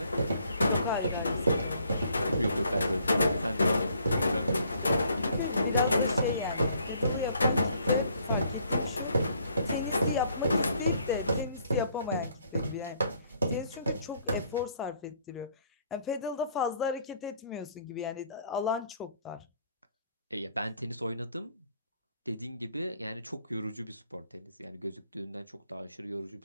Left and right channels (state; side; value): inverted; both; correlation -0.64